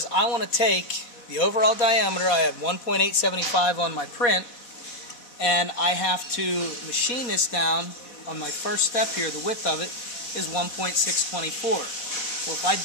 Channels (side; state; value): right; late; 4.2 ms